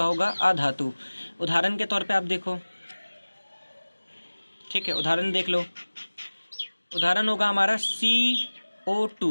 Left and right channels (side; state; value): both; inverted; correlation -1.00